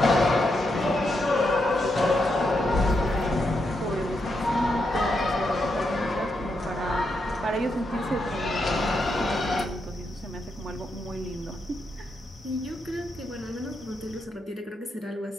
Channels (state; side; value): normal; both; correlation 0.82